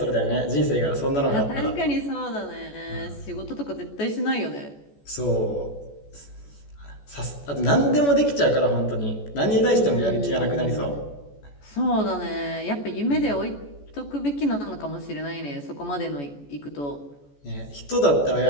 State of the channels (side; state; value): right; late; 14 ms